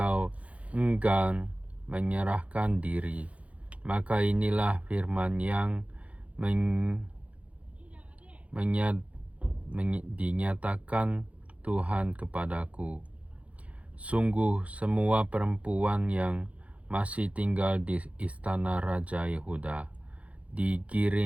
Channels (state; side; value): late; left; 0.065 ms